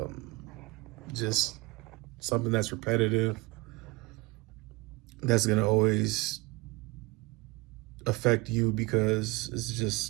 just something that's repetitive, that's gonna always affect you because it's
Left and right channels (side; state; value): left; quieter; 23.0 dB